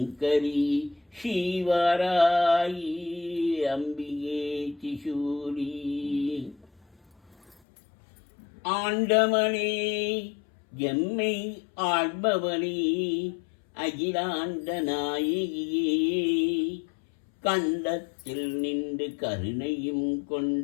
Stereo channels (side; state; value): right; drops out; at 7.6 s